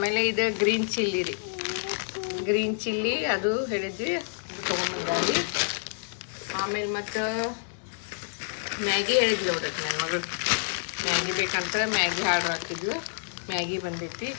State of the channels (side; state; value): right; silent; digital silence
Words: ಇದು ಗ್ರೀನ್ ಚಿಲ್ಲಿ ಅದು ಹೇಳಿದ್ವಿ, ಅದು ತೊಗೊಂಬಂದಾರಿ. ಆಮೇಲೆ ಮತ್ತು ಮ್ಯಾಗಿ ಹೇಳಿದ್ವಿ ನೋಡ್ರಿ, ನನ್ನ ಮಗಳು ಮ್ಯಾಗಿ ಬೇಕಂತ ಮ್ಯಾಗಿ ಆರ್ಡ್ರ್ ಹಾಕಿದ್ಲು, ಮ್ಯಾಗಿ ಬಂದೈತಿ.